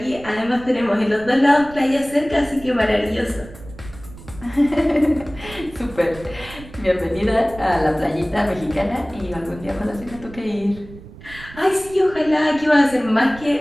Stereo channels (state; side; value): noise; right; rumble, 17 dB below the sound